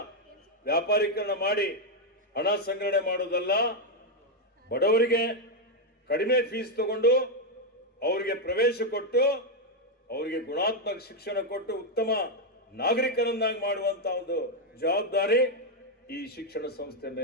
ವ್ಯಾಪಾರೀಕರಣ ಮಾಡಿ ಹಣ ಸಂಗ್ರಹಣೆ ಮಾಡೋದಲ್ಲ, ಬಡವರಿಗೆ ಕಡಿಮೆ ಫೀಸ್ ತಗೊಂಡು ಅವರಿಗೆ ಪ್ರವೇಶ ಕೊಟ್ಟು ಅವರಿಗೆ ಗುಣಾತ್ಮಕ ಶಿಕ್ಷಣ ಕೊಟ್ಟು ಉತ್ತಮ ನಾಗರಿಕರನ್ನಾಗಿ ಮಾಡುವಂತ ಒಂದು ಜವಾಬ್ದಾರಿ ಈ ಶಿಕ್ಷಣ ಸಂಸ್ಥೆ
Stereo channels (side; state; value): both; normal; correlation 0.02